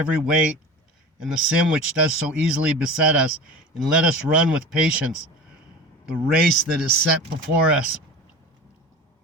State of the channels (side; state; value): both; normal; correlation 0.34